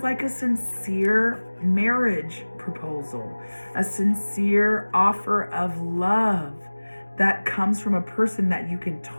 like a sincere marriage proposal, a sincere offer of love that comes from a person that you can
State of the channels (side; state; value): both; inverted; correlation -1.00